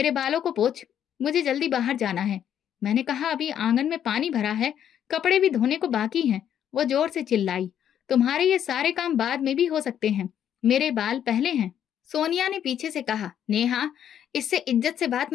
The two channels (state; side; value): quieter; right; 9.7 dB